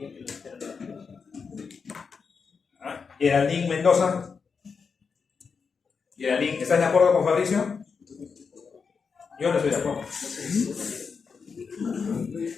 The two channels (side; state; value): right; quieter; 5.5 dB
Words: los seronegativos. Geraldine Mendoza. Geraldine, ¿estás de acuerdo con Fabricio? Yo no estoy de acuerdo.